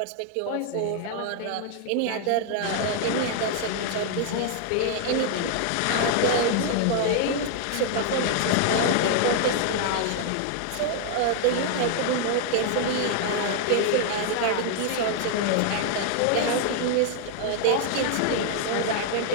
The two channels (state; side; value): different; both; correlation 0.00